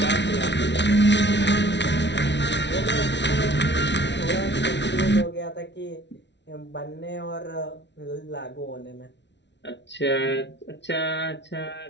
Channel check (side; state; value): right; late; 0.51 ms